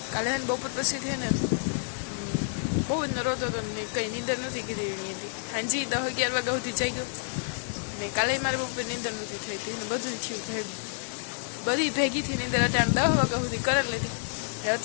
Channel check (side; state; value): right; silent; digital silence